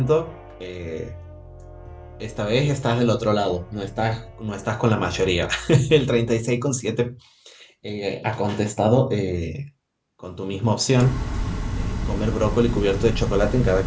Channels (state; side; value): identical; both; correlation 1.00